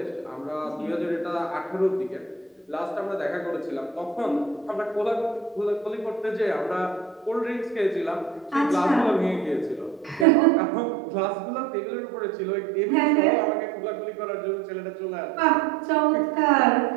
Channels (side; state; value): left; drops out; at 10.2 s